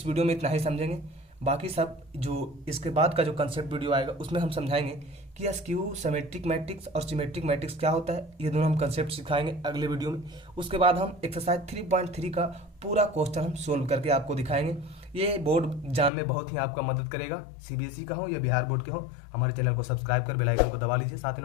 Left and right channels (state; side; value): drops out; right; at 16.1 s